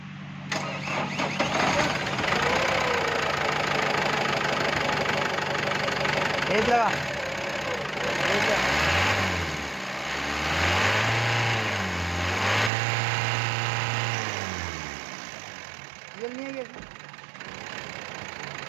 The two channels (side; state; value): left; drops out; at 12.7 s